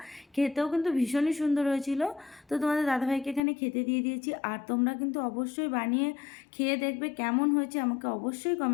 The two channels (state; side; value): drops out; right; at 3.4 s